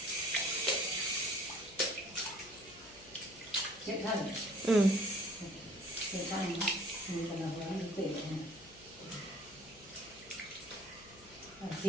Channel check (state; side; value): noise; left; hum, 22 dB below the sound